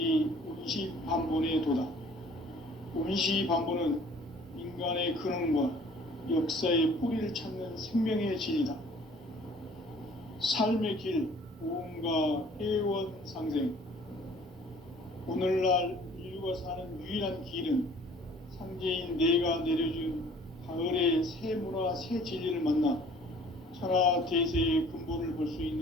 운시반본의 도다. 운시반본은 인간의 근원과 역사의 뿌리를 찾는 생명의 진리다. 삶의 길, 보험과 회원 상생. 오늘날 인류가 사는 유일한 길은 상제인 내가 내려준 가을의 새 문화, 새 진리를 만나 천하 대세의 근본을 볼 수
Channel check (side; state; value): both; normal; correlation 0.53